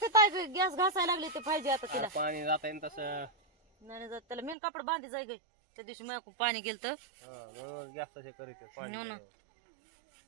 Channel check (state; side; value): drops out; left; at 4.5 s